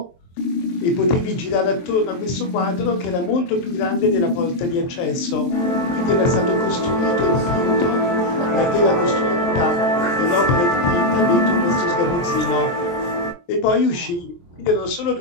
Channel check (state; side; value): late; right; 23 ms